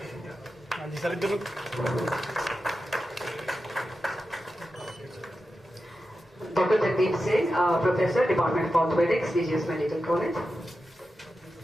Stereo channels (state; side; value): normal; both; correlation 0.91